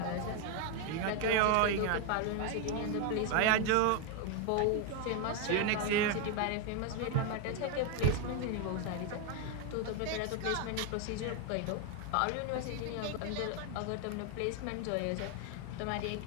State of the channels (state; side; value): different; both; correlation 0.01